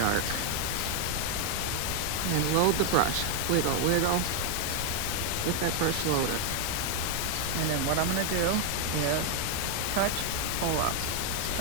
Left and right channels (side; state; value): both; different; correlation 0.00